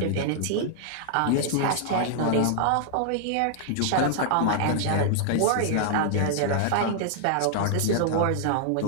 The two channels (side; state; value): both; different; correlation -0.01